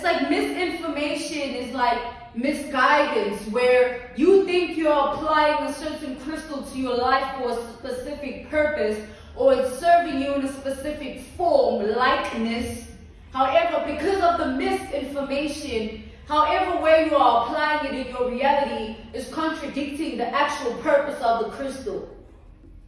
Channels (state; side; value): identical; both; correlation 1.00